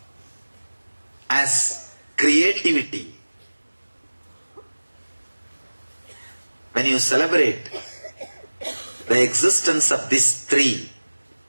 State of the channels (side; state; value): both; inverted; correlation -1.00